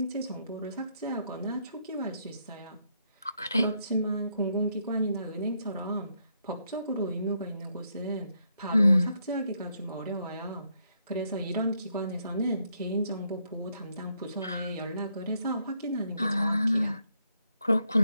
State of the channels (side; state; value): both; inverted; correlation -0.75